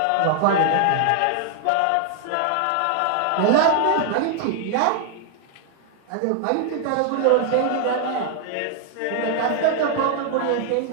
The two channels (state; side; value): different; both; correlation 0.00